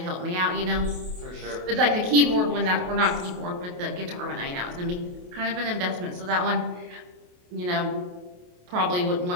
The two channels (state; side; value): late; left; 28 ms